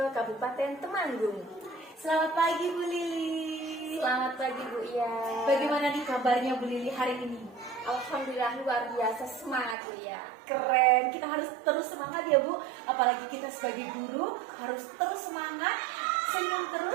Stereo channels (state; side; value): drops out; left; at 9.8 s